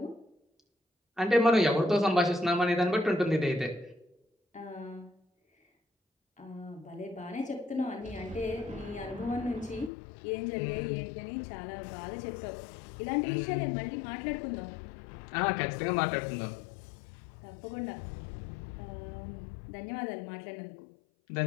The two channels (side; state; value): right; drops out; at 9.9 s